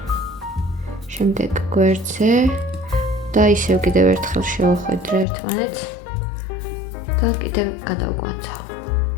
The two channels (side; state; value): right; drops out; at 5.2 s